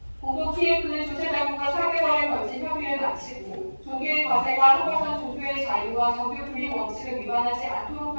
공동 TF는 주최자국과 4개월에 걸친 협의를 마치고 종교의 과세가 허가선 종교의 자유와 정교 분립 원칙을 위반하지 않도록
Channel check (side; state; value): both; inverted; correlation -1.00